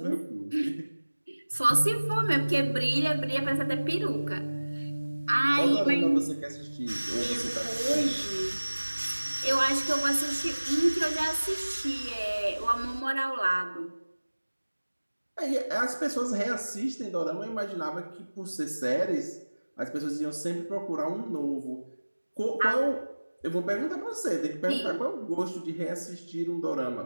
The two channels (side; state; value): both; inverted; correlation -1.00